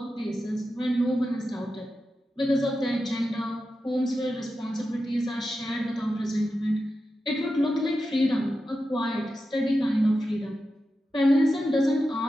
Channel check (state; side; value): normal; both; correlation 0.90